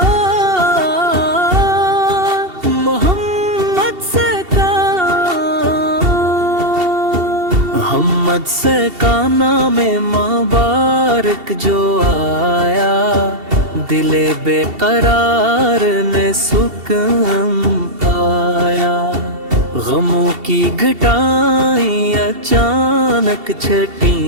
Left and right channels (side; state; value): left; late; 2.7 ms